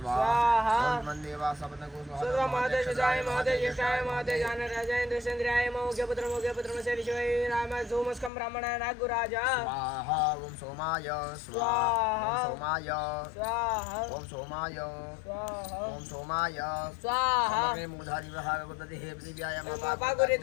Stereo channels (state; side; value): drops out; right; at 8.3 s